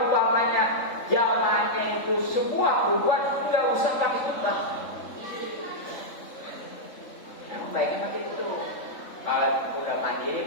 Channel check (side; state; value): right; late; 3.6 ms